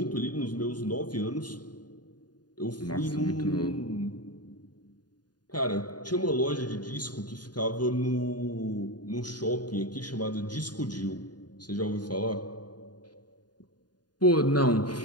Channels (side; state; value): right; late; 0.70 ms